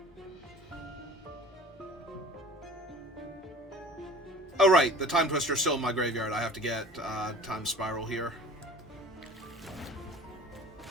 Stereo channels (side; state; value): both; normal; correlation 0.44